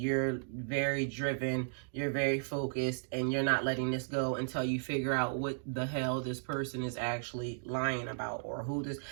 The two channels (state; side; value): silent; left; digital silence